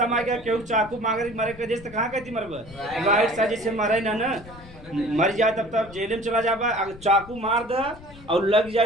में गया क्यों चाकू मांगे मरे के देश तो कहाँ कहती मरब? राइट साइड जैसे मरे ना मर जाए तब तब जेल में चला जाबा। अगर चाकू मार दे और लग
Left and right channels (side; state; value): left; noise; rumble, 19 dB below the sound